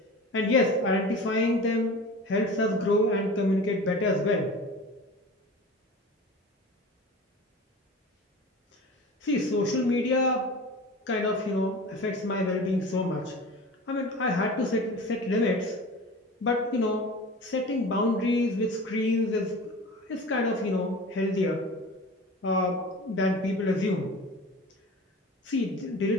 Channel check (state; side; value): normal; both; correlation 0.36